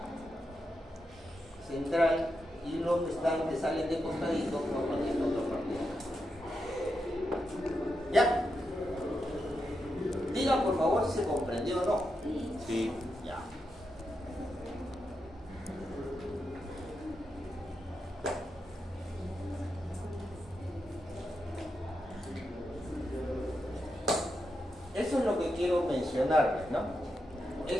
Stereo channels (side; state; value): both; normal; correlation 0.86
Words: central y los que salen de costadito forman esta otra parte. ¿Ya? Diga por favor si se comprendió o no. Sí. Ya. Eso es lo que quiero mencionarles, ¿no?